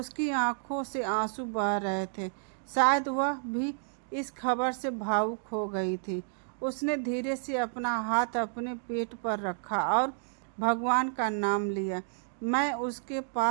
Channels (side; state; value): left; silent; digital silence